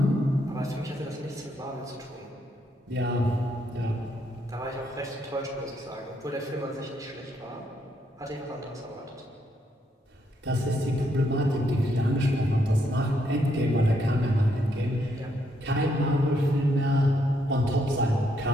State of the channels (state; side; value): normal; both; correlation 0.75